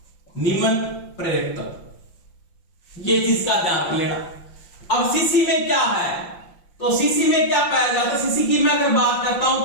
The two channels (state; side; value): late; right; 5.8 ms